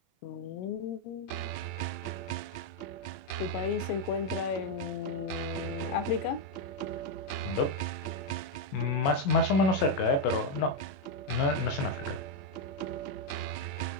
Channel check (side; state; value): right; late; 22 ms